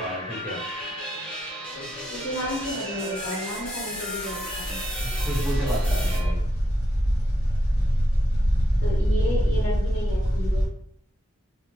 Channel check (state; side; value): normal; both; correlation 0.83